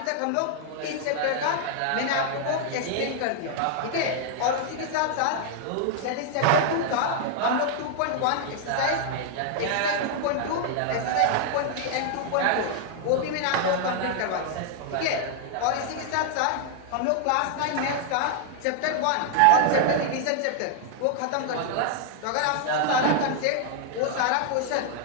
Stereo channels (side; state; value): both; different; correlation 0.00